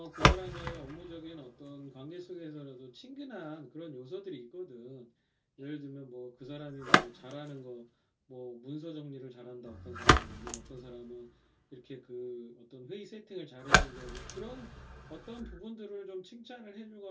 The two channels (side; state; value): both; identical; correlation 1.00